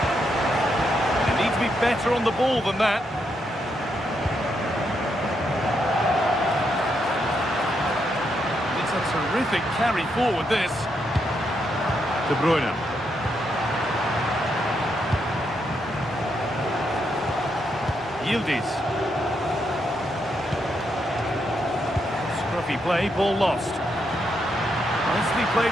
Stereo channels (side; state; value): both; normal; correlation 0.80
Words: They need to be better on the ball than that. It's a terrific carry forward, this. De Bruyne. Yildiz. Scruffy play, ball lost. Nicely played